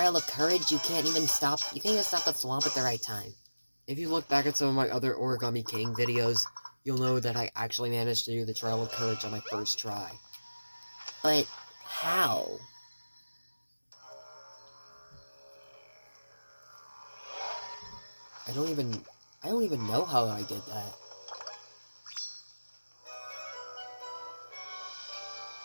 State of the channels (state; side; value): inverted; both; correlation -1.00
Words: of Courage, you can't even stop the swamp at the right time. If you look back at some of my other Origami King videos, you'll know that I actually managed to do the Trial of Courage on my first try. But how? I don't even know how I did that.